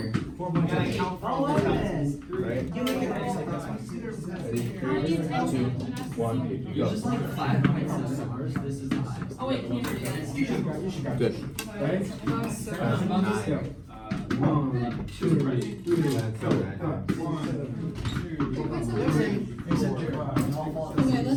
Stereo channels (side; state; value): both; identical; correlation 1.00